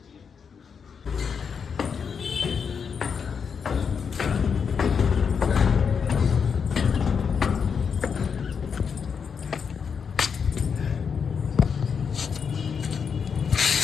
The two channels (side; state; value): right; quieter; 6.4 dB